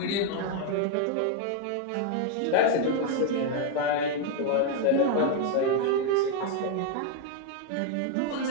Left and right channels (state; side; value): different; both; correlation 0.01